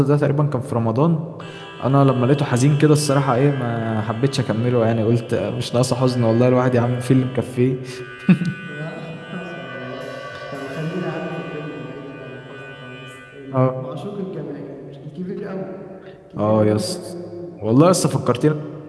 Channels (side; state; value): both; identical; correlation 1.00